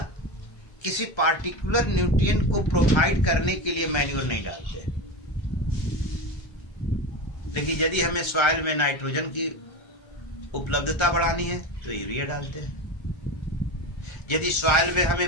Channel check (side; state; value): right; late; 1.3 ms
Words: किसी पार्टिकुलर न्यूट्रिएंट को प्रोवाइड करने के लिए मैन्योर नहीं डालते, लेकिन यदि हमें सॉइल में नाइट्रोजन की उपलब्धता बढ़ानी है तो यूरिया डालते हैं। यदि सॉइल में